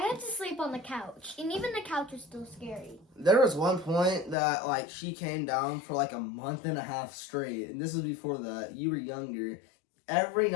to sleep on the couch, and even the couch was still scary. There was one point that, like, she came down for, like, a month and a half straight. And this was before that. You were younger. Every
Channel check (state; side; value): drops out; right; at 4.4 s